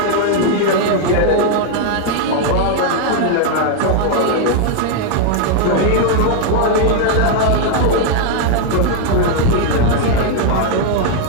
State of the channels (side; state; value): both; different; correlation 0.00